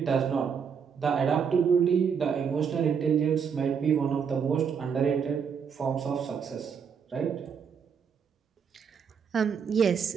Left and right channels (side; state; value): left; quieter; 6.8 dB